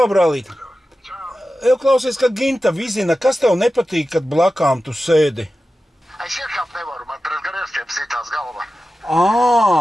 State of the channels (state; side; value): normal; both; correlation 0.94